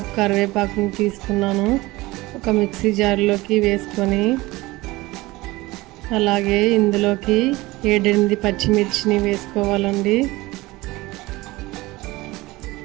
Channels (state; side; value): quieter; left; 20.3 dB